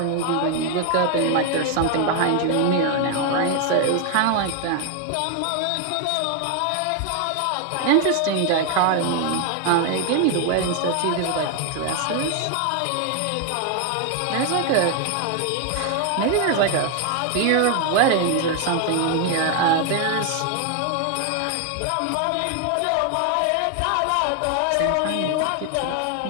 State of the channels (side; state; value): both; different; correlation 0.00